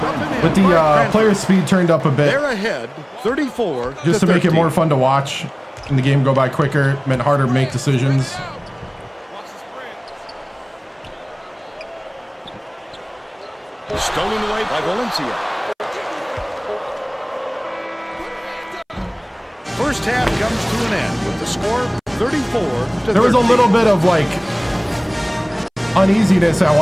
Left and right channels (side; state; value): both; identical; correlation 1.00